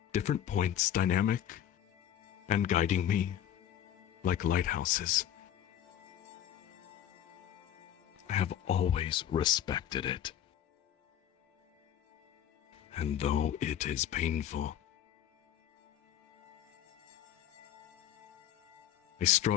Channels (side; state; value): right; quieter; 10.7 dB